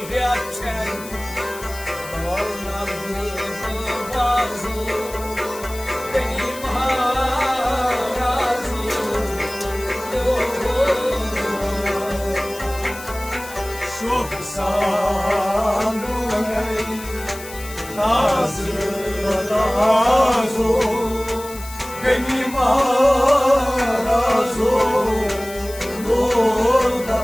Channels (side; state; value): left; noise; hiss, 15 dB below the sound